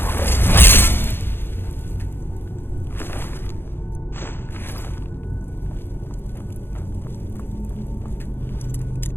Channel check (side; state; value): right; late; 0.10 ms